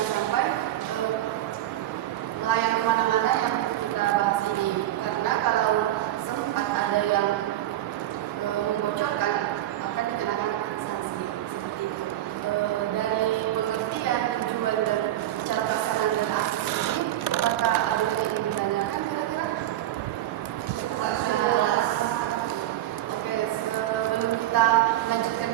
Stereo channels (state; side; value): quieter; left; 13.7 dB